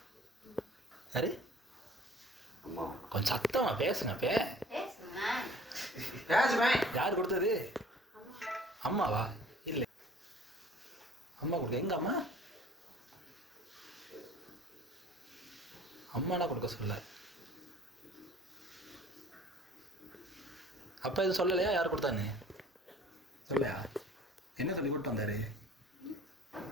யாரு? அம்மா. கொஞ்சம் சத்தமா பேசுனப்பே. ராஜ்பாய் யார் கொடுத்தது? அம்மாவா? இல்லை, அம்மா கொடுக்க. எங்க அம்மா? அம்மானா கொடுக்க சொல்ல. அப்பா எதுவும் சொல்லலையா யார் கொடுத்தான்னு? சொல்லலையா? என்ன சொல்லி கூப்பிட்டு வந்தாரு?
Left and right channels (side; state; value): both; normal; correlation 0.51